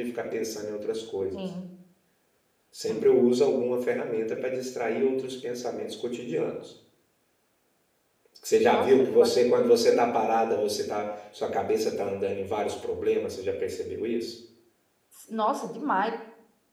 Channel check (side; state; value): both; identical; correlation 1.00